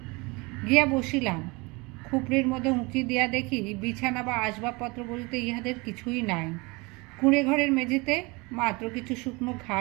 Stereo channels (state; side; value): quieter; left; 26.1 dB